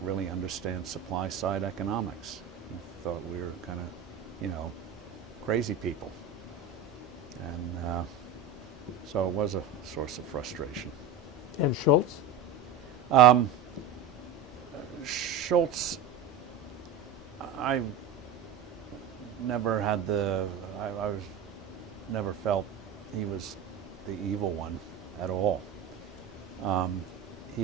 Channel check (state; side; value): quieter; left; 5.6 dB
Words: understand supply side economics. He thought we were kind of, crazy people. And so it was a source of frustration. And Schultz? Schultz, I never had I never felt he was the evil one at all.